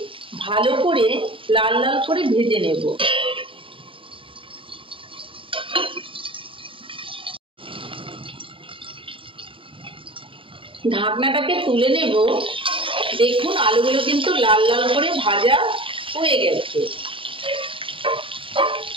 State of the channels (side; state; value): left; late; 0.25 ms